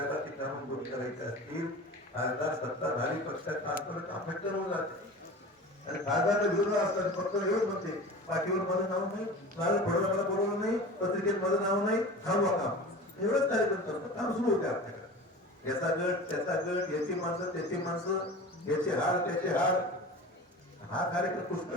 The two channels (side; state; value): both; normal; correlation 0.35